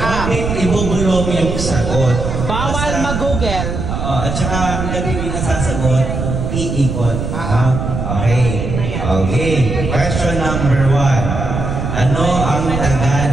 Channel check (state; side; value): noise; right; rumble, 3 dB below the sound